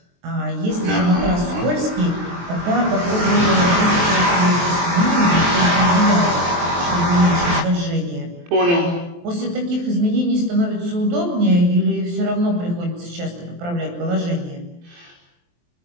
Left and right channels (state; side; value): late; left; 23 ms